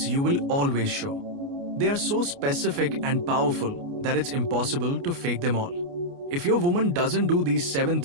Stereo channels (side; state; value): left; late; 29 ms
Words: you will always show. They are so specific and powerful that it's impossible to fake them all. If your woman doesn't do these 7